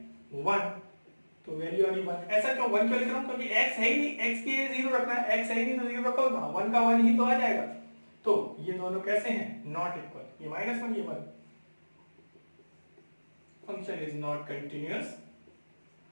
1, तो वैल्यू आ गई 1। ऐसा क्यों 1 क्यों लिख रहा हूं, क्योंकि x है ही नहीं, x के 0 रखना है, x है ही नहीं तो 0 रखो, 1 का 1 ही तो आ जाएगा। तो ये दोनों कैसे हैं, नॉट इक्वल, ये -1 ये 1। Function is not continuous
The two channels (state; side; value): inverted; both; correlation -1.00